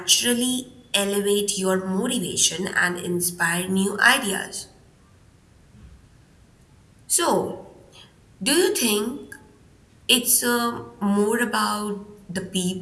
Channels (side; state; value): both; identical; correlation 1.00